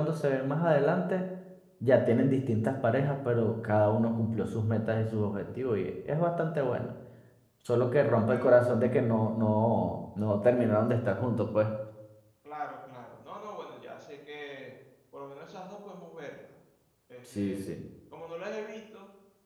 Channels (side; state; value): both; identical; correlation 1.00